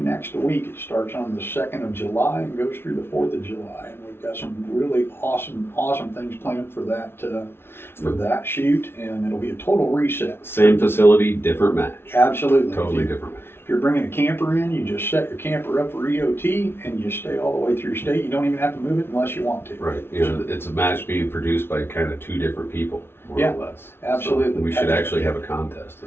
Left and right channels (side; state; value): right; late; 0.11 ms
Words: next week. It starts on the 2nd of July and goes through the 4th of July, and we've got some really awesome things planned for that shoot, and it'll be a total reset. Same facility, different match. Absolutely, totally different match. If you're bringing a camper in, you just set your camper up for EOT, and you stay all the way through state. You don't even have to move it unless you want to. Right. You know, it's a match being produced by kind of 2 different people, more or less. Absolutely. So we should actually have a contest